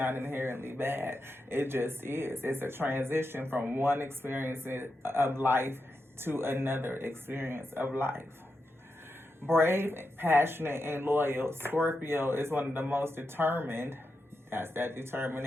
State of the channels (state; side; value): normal; both; correlation 0.87